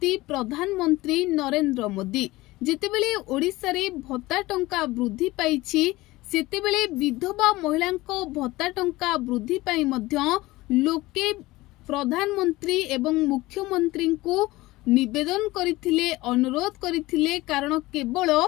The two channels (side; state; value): right; quieter; 19.4 dB